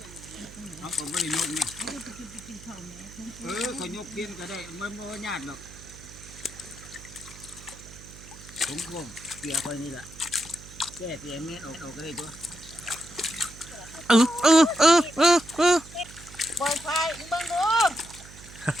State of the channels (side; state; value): right; noise; hum, 18 dB below the sound